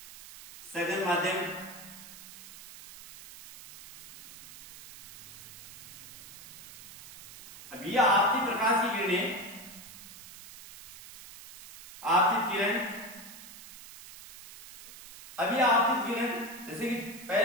सघन माध्यम। अब ये आपकी प्रकाश की किरणें, आपतित किरण, अभी आपतित किरण जैसे कि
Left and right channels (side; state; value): right; noise; hiss, 16 dB below the sound